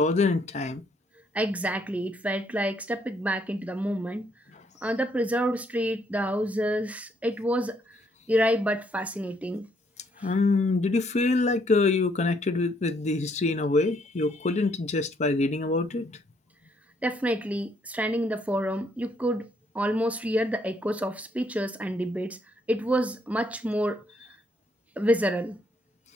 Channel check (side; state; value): both; normal; correlation 0.70